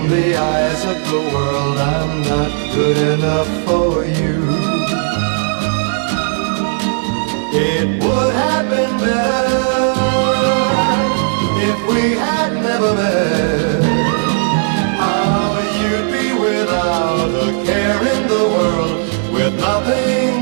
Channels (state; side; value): silent; left; digital silence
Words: the eyes of the world, I'm not good enough for you. It would have been better if we had never met. How you'd be without a care in the world, with nothing